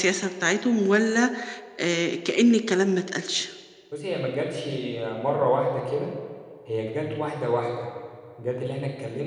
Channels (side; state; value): both; identical; correlation 1.00